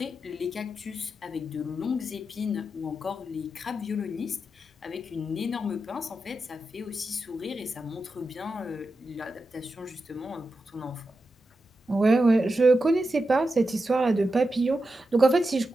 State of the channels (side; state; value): both; normal; correlation 0.89